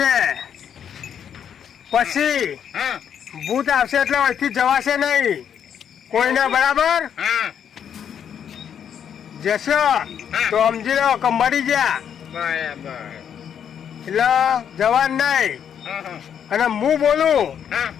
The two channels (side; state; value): right; quieter; 8.5 dB